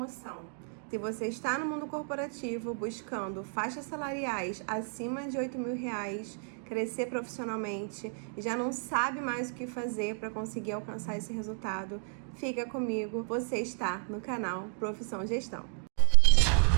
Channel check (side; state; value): left; silent; 56 dB below the other